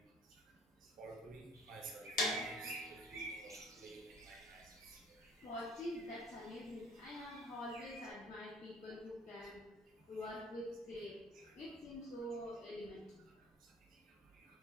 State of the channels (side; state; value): both; normal; correlation 0.51